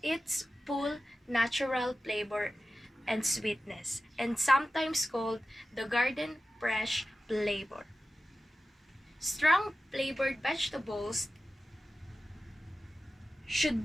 its full natural flavor and sweetness, and sometimes called the garden fresh flavor. Strong flavored vegetables should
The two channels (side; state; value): both; normal; correlation 0.94